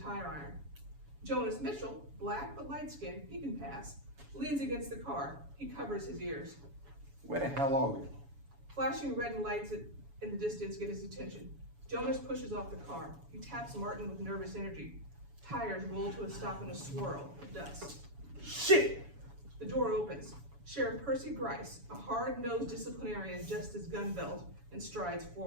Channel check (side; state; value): left; late; 7.1 ms